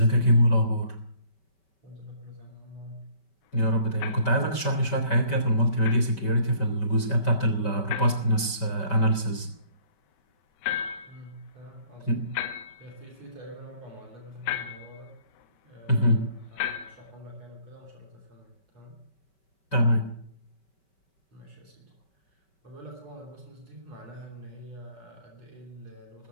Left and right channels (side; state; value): right; late; 5.2 ms